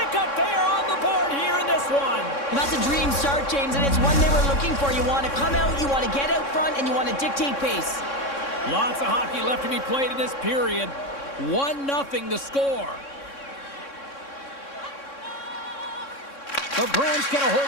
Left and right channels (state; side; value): late; right; 3.6 ms